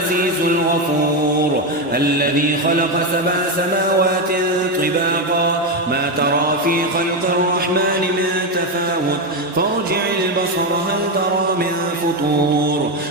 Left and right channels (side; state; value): both; normal; correlation 0.09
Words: الغفور، الذي خلق 7 سماوات طباقا ما ترى في خلق الرحمن من تفاوت، فارجع البصر هل ترى من فطور،